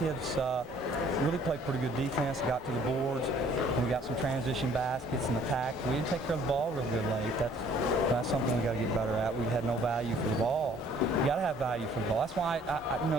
really played pretty good defense, got to the boards, and we got some transition baskets and attacked. We didn't take care of the ball real good late. That's something we got to get better at. We had no value for the ball. You got to have value for the ball. That's why, you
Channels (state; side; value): normal; both; correlation 0.58